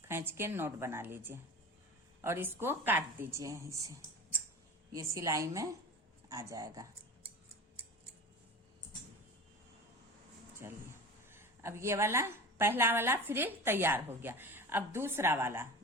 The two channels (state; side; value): normal; both; correlation 0.33